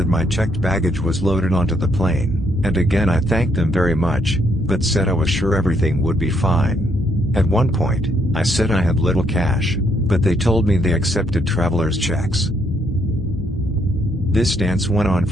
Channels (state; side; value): normal; both; correlation 0.72